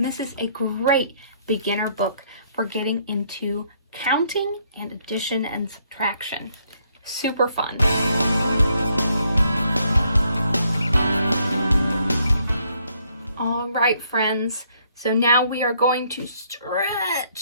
this is a great beginner book for getting into counting and addition and subtraction. Super fun. All right, friends. So now we are going to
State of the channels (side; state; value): both; inverted; correlation -0.69